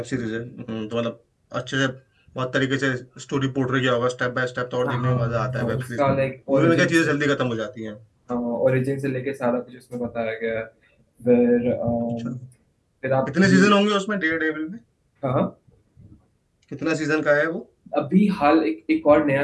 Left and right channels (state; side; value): identical; both; correlation 1.00